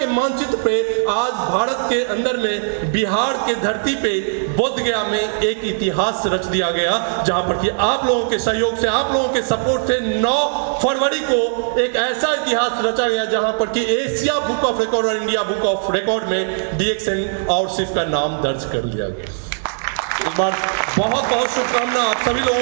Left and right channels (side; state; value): left; silent; digital silence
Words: मानचित्र पे आज भारत के अंदर में बिहार के धरती पे बोध गया में एक इतिहास रच दिया गया, जहां पर कि आप लोगों के सहयोग से, आप लोगों के सपोर्ट से 9 फरवरी को एक ऐसा इतिहास रचा गया जहां पर कि एशिया बुक ऑफ रिकॉर्ड और इंडिया बुक ऑफ रिकॉर्ड में DXN और सिर्फ का नाम दर्ज कर लिया गया। एक बार बहुत बहुत शुभकामनाएं आप सभी